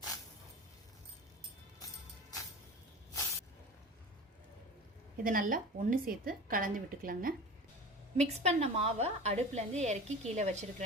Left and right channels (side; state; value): both; normal; correlation 0.34